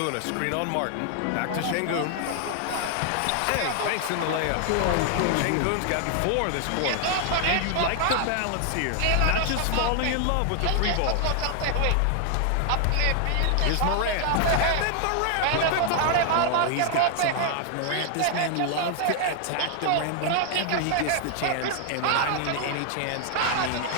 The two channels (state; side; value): different; both; correlation 0.00